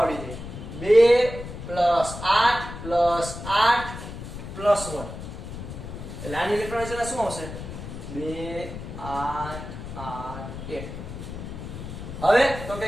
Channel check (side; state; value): left; noise; rumble, 9 dB below the sound